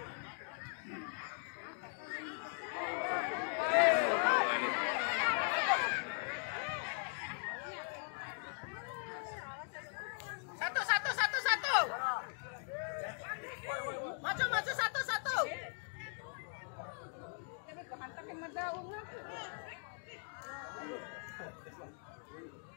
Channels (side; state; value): right; silent; 51 dB below the other